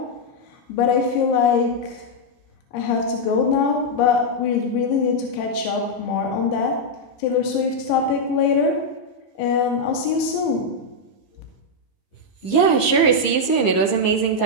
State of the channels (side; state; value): right; late; 15 ms